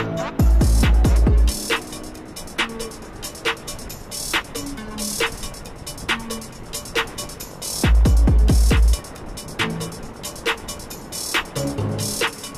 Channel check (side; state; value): both; identical; correlation 1.00